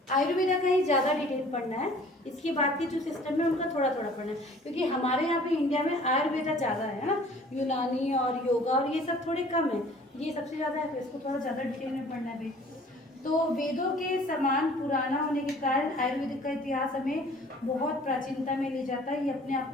आयुर्वेदा का ही ज़्यादा डिटेल पढ़ना है, इसके बाद की जो सिस्टम है उनका थोड़ा थोड़ा पढ़ना है, क्योंकि हमारे यहाँ पे इंडिया में आयुर्वेदा ज़्यादा है ना, यूनानी और योगा और ये सब थोड़े कम है, ये सबसे ज़्यादा है, तो इसको थोड़ा ज़्यादा डिटेल में पढ़ना है भाई। तो वेदों के समान पुराना होने के कारण आयुर्वेदिक का इतिहास हमें बहुत प्राचीनता में ले जाता है। ये अपने आप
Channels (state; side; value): normal; both; correlation 0.51